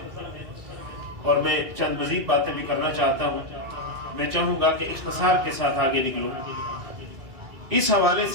اور میں چند مزید باتیں بھی کرنا چاہتا ہوں. میں چاہوں گا کہ اختصار کے ساتھ آگے نکلوں. اس حوالے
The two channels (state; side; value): late; left; 2.5 ms